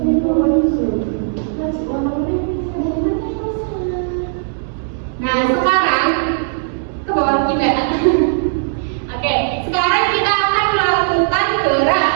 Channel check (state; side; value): silent; left; digital silence